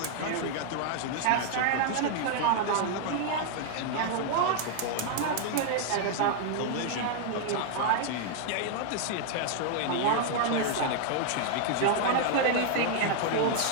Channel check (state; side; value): different; both; correlation 0.00